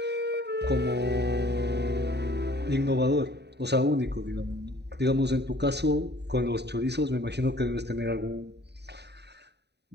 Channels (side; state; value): left; late; 0.49 ms